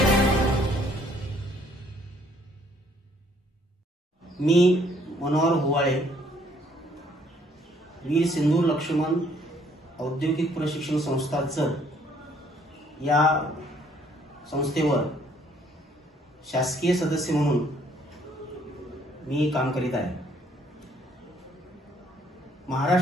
मी मनोहर हुवाळे, वीर सिंधू लक्ष्मण औद्योगिक प्रशिक्षण संस्था जत या संस्थेवर शासकीय सदस्य म्हणून मी काम करीत आहे।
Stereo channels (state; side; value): normal; both; correlation 0.64